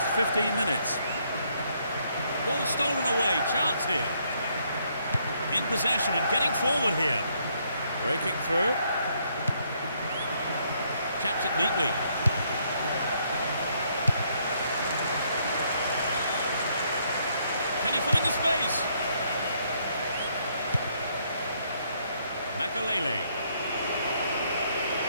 15 minutes. Ball stolen away, chance here. In possession and getting forward here. Breaking through. Chaps it neatly. Can he find the space? Makalele.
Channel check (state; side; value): inverted; both; correlation -0.71